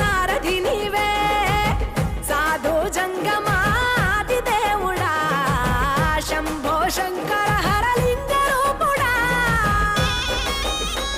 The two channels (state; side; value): identical; both; correlation 1.00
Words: నీవే, సాధు జంగమాది దేవుడా శంభో శంకర